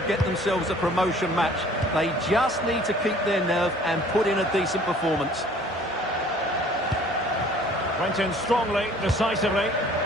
get themselves a promotion match. They just need to keep their nerve and put in a decent performance. Went in strongly, decisively.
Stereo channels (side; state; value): both; normal; correlation 0.53